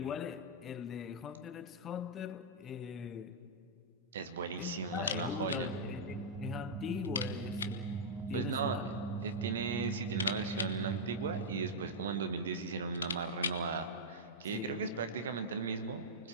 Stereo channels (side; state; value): both; normal; correlation -0.08